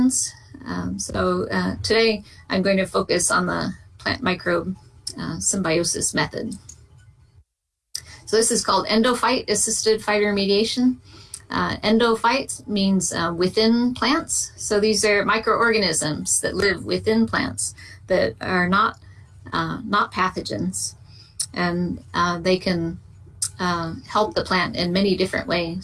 So today I'm going to focus on the plant-microbe symbiosis method. So this is called Endophyte-assisted phytoremediation. Endophyte means within plants. So these are microorganisms that live within plants that are not pathogens, and they can help the plant in many different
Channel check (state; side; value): identical; both; correlation 1.00